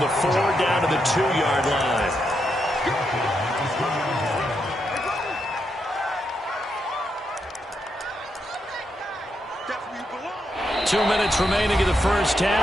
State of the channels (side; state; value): both; normal; correlation 0.82